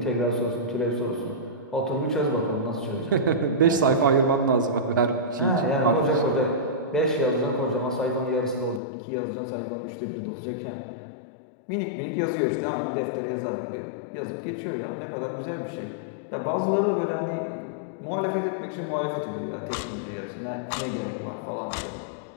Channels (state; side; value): drops out; right; at 8.8 s